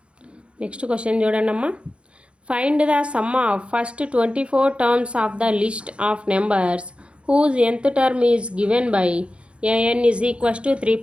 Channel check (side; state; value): left; late; 0.058 ms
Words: నెక్స్ట్ క్వశ్చన్ చూడండి అమ్మా. Find the sum of first 24 terms of the list of numbers whose nth term is given by an is equals to 3